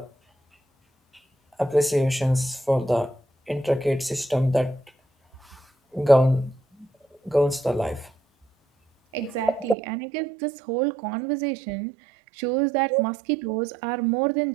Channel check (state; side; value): drops out; left; at 9.8 s